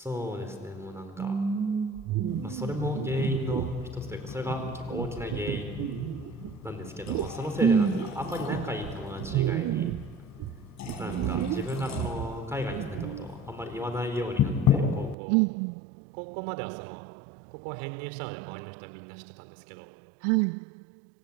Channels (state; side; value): drops out; left; at 15.2 s